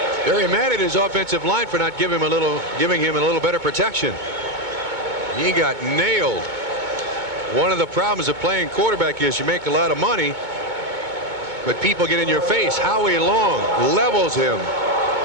Very mad at his offensive line for not giving him a little better protection. He got nailed. One of the problems of playing quarterback is you make a lot of money, but people get in your face. Howie Long levels him,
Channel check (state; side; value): late; left; 2.2 ms